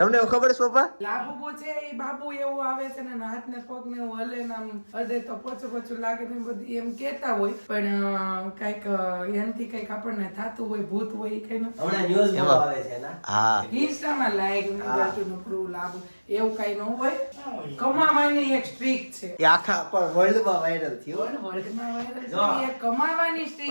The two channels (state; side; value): inverted; both; correlation -1.00